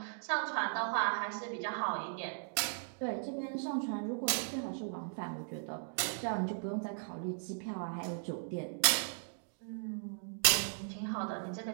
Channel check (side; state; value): left; silent; digital silence